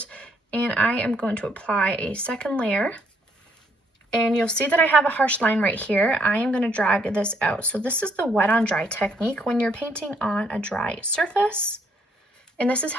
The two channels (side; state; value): both; normal; correlation 0.70